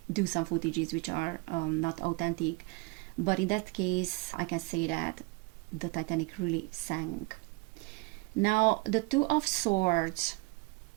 do some footages which are not authentic. But in that case, I can say that the Titanic really sank. Now, the Two of Swords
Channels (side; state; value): left; quieter; 26.4 dB